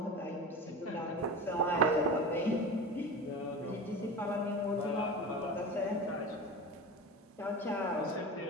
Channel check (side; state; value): both; normal; correlation 0.29